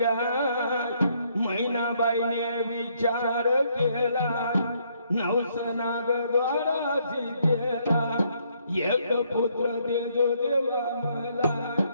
महिनाबाईने विचार केला नवस नागद्वाराशी केला एक पुत्र देजो देवा मला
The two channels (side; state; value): both; inverted; correlation -0.70